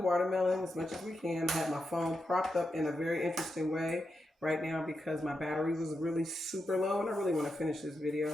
as much as we can. I had my phone propped up in a very interesting way right now because my battery was really super low and I really want to finish this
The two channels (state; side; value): normal; both; correlation 0.87